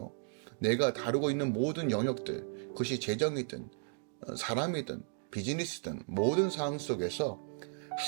내가 다루고 있는 모든 영역들, 그것이 재정이든 사람이든 비즈니스든 모든 상황 속에서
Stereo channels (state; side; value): silent; left; digital silence